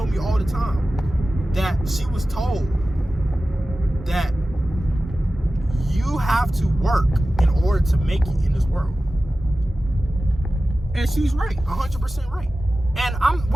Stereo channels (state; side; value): normal; both; correlation 0.95